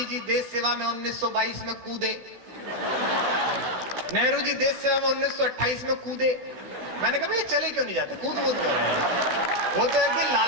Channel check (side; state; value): left; late; 16 ms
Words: जी देश सेवा में 1922 में कूदे, नेहरू जी देश सेवा में 1928 में कूदे। मैंने कहा ये चले क्यों नहीं जाते, कूद कूद कर रहे हैं। वो तो एक दिन